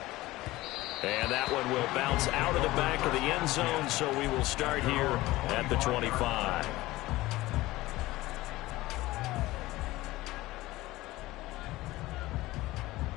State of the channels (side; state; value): right; quieter; 18.3 dB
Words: And that one will bounce out of the back of the end zone, so we will start here at the 25.